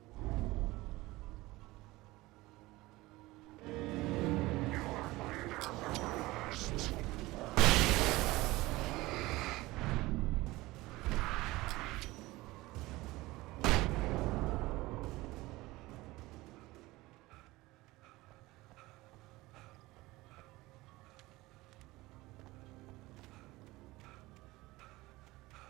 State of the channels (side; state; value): left; quieter; 19.8 dB